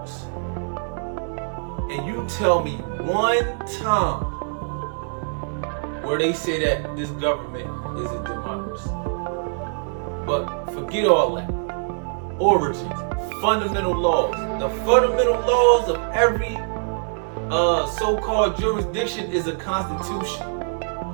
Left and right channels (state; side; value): silent; left; digital silence